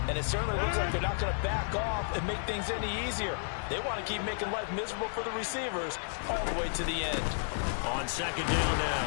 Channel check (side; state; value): right; silent; digital silence